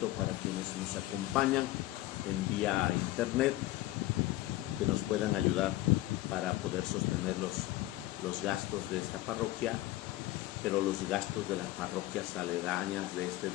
para quienes nos acompañan en vía internet que nos puedan ayudar para poder sostener los gastos de esta parroquia, pero los gastos de las parroquias aledañas de este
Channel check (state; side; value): quieter; right; 16.7 dB